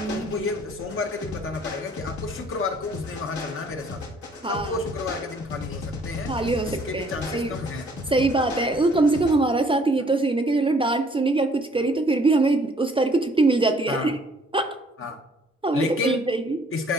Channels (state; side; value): normal; both; correlation 0.60